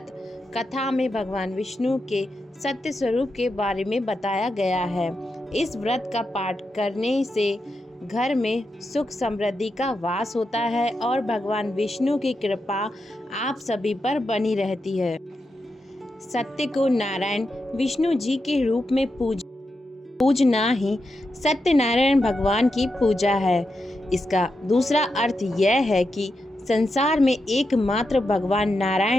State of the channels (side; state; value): both; normal; correlation 0.87